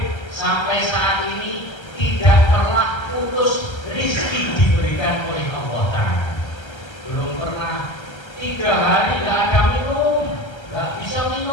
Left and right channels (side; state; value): right; late; 1.3 ms